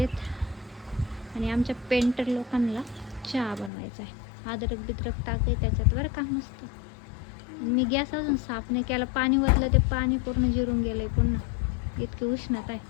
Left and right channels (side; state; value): right; drops out; at 3.7 s